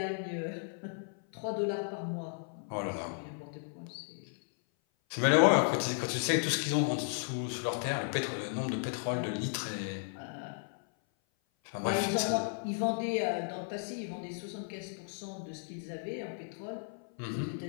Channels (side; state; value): right; silent; 55 dB below the other